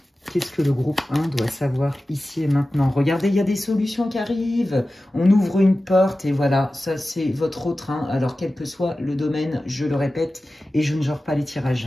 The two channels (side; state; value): both; normal; correlation 0.95